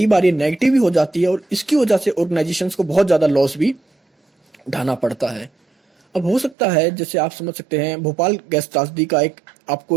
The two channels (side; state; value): left; drops out; at 6.6 s